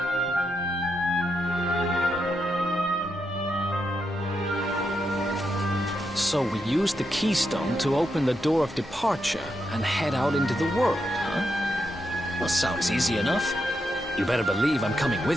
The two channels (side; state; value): both; normal; correlation 0.83